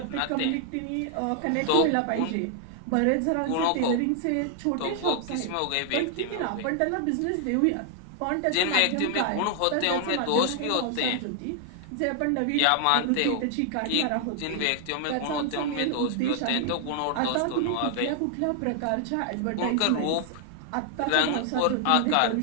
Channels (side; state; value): both; different; correlation 0.00